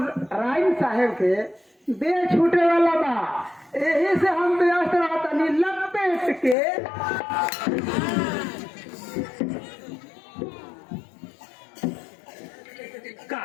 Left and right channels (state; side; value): drops out; right; at 6.6 s